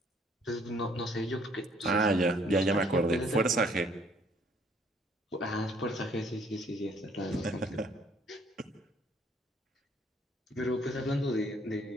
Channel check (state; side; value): normal; both; correlation 0.62